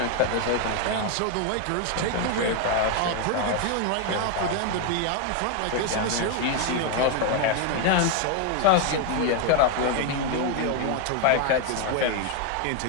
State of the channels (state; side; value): different; both; correlation 0.01